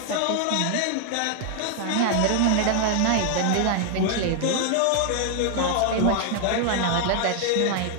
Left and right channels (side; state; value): both; different; correlation 0.00